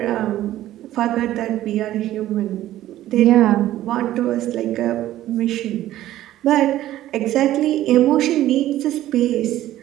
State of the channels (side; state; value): left; quieter; 13.9 dB